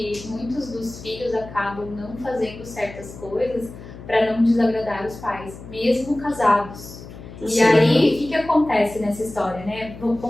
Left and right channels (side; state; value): left; noise; hum, 15 dB below the sound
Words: muitos dos filhos acabam não fazendo certas coisas para não desagradar os pais, mesmo casados. Sim. E aí, o que acontece nessa história, né?